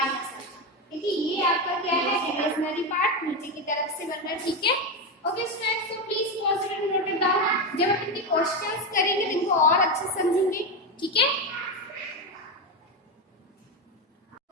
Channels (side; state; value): both; normal; correlation 0.13